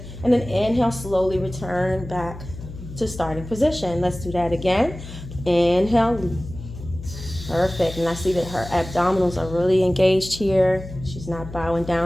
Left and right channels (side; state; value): left; noise; hum, 12 dB below the sound